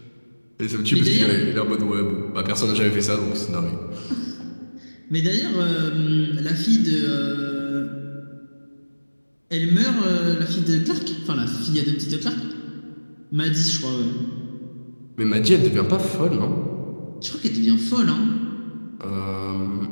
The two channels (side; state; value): both; inverted; correlation -1.00